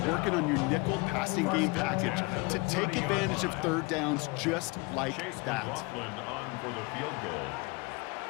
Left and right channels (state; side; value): quieter; right; 27.4 dB